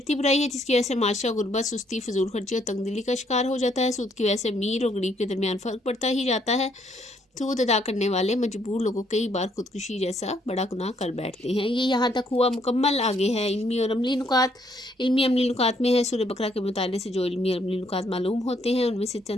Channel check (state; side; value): normal; both; correlation 0.70